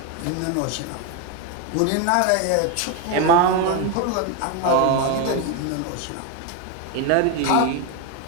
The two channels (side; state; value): both; different; correlation 0.02